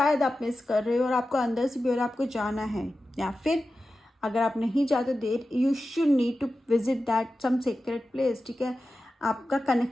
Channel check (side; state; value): both; normal; correlation 0.93